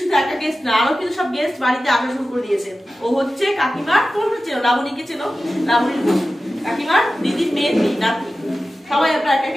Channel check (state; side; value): normal; both; correlation 0.95